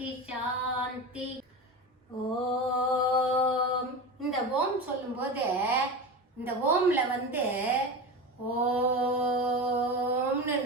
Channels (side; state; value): both; normal; correlation 0.25